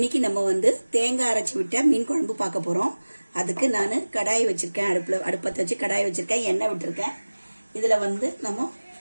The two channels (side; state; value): both; inverted; correlation -1.00